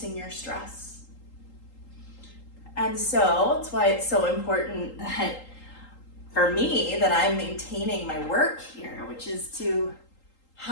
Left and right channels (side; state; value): right; late; 3.8 ms